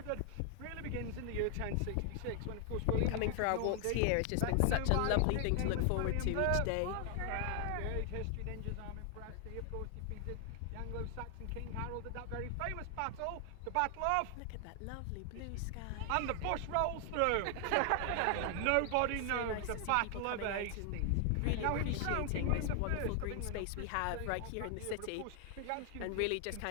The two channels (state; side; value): different; both; correlation 0.00